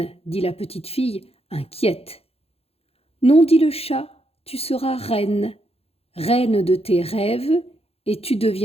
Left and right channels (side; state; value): right; late; 0.29 ms